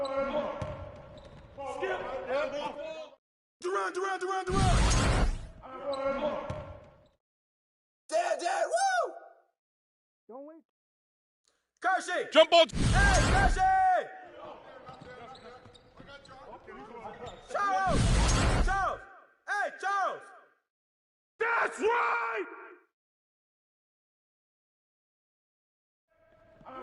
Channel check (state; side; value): identical; both; correlation 1.00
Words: Skip. Durant. Dad, woo! Don't wait. Kersey! Jump ball! Hey, Kersey! Charles! Hey, Charles! That's right!